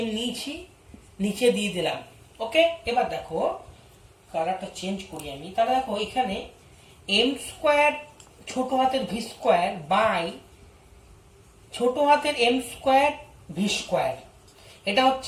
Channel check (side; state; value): both; identical; correlation 1.00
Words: নিয়েছি, নিচে দিয়ে দিলাম। ওকে, এবার দেখো কালারটা চেঞ্জ করি আমি। তাহলে দেখো এখানে এম স্কোয়ার ছোট হাতের ভি স্কোয়ার বাই ছোট হাতের এম স্কোয়ার ভি স্কোয়ার, এটা